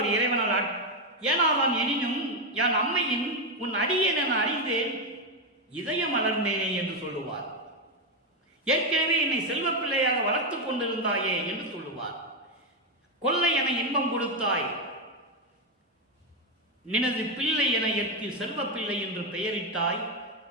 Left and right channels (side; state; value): both; normal; correlation 0.06